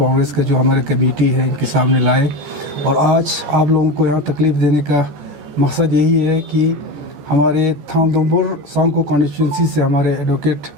کا جو ہمارے کمیٹی ہے ان کے سامنے لائے اور آج آپ لوگوں کو یہاں تکلیف دینے کا مقصد یہی ہے کہ ہمارے تھام دمبر سانکو کانسٹیٹوئنسی سے ہمارے ایڈوکیٹ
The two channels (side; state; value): left; late; 14 ms